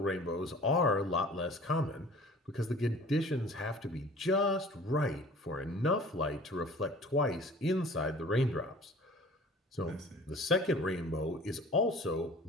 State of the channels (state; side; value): normal; both; correlation 0.46